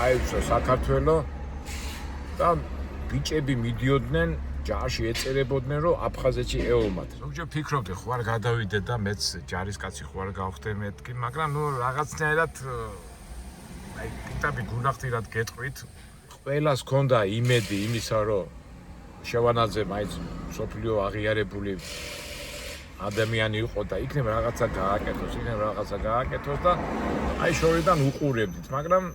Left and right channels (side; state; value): both; identical; correlation 1.00